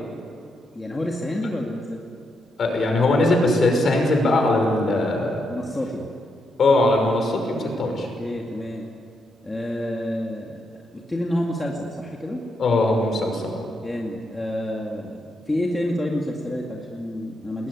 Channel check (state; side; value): normal; both; correlation 0.81